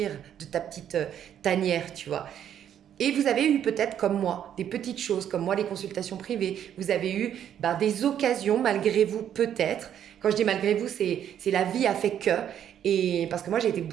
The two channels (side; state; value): left; quieter; 9.8 dB